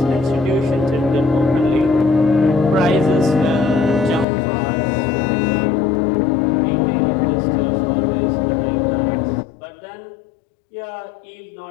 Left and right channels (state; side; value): drops out; right; at 4.2 s